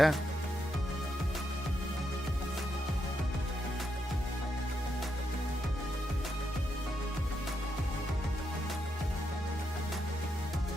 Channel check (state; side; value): normal; both; correlation 0.82